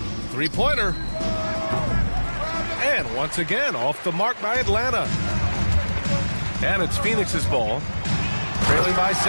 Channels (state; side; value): inverted; both; correlation -1.00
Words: 3-pointer. And once again, off the mark by Atlanta. And it's Phoenix's ball. Trailing by